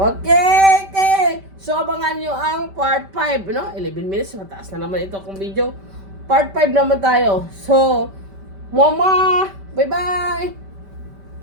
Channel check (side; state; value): left; late; 5.1 ms